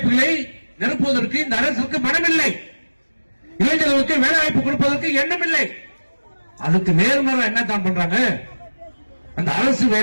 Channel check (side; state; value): both; inverted; correlation -1.00